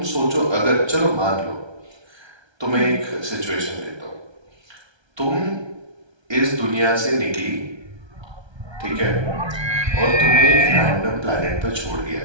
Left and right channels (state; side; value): late; left; 1.3 ms